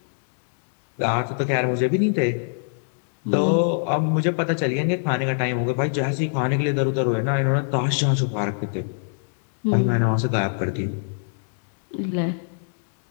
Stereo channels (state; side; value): silent; right; 63 dB below the other